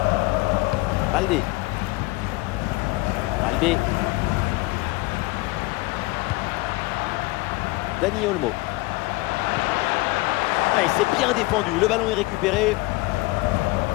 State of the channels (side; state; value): right; quieter; 22.0 dB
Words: Balde. Balde. Dani Olmo. Ah, il s'est bien défendu. Le ballon est récupéré.